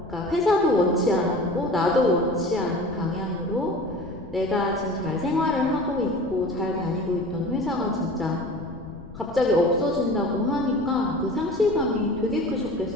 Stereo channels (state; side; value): noise; left; rumble, 18 dB below the sound